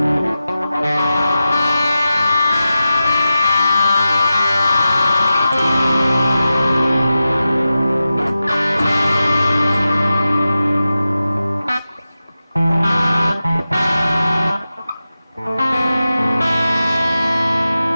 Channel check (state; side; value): inverted; both; correlation -0.93